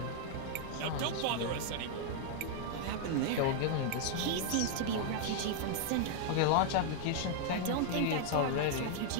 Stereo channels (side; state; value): both; different; correlation 0.00